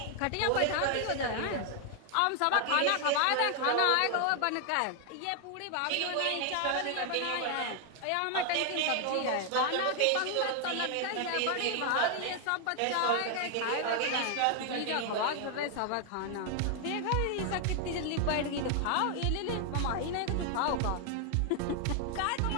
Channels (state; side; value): different; both; correlation 0.00